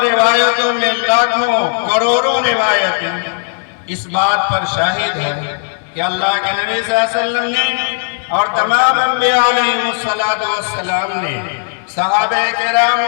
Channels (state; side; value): silent; right; 64 dB below the other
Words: روایتوں میں لاکھوں کروڑوں روایتیں اس بات پر شاہد ہے کہ اللہ کے نبی صلی اللہ علیہ وسلم نے اور تمام انبیاء علیہ السلام نے، صحابہ کرام